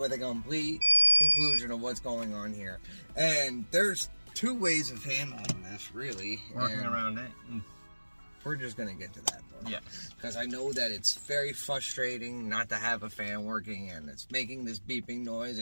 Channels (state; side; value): inverted; both; correlation -1.00